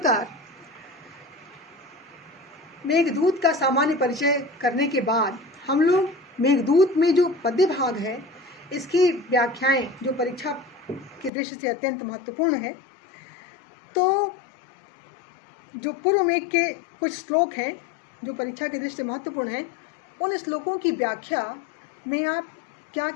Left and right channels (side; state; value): right; drops out; at 11.3 s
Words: मेघदूत का सामान्य परिचय करने के बाद हम लोग मेघदूत में जो पद्य भाग है इसकी व्याख्याएं जो परीक्षा की दृष्टि से अत्यंत महत्वपूर्ण है। तो जो पूर्व मेघ के कुछ श्लोक हैं जो परीक्षा की दृष्टि से महत्वपूर्ण है, उन श्लोकों की व्याख्या में आप क्या